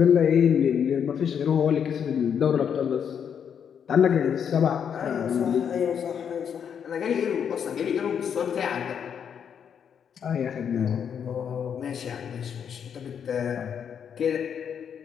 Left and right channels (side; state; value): right; quieter; 7.8 dB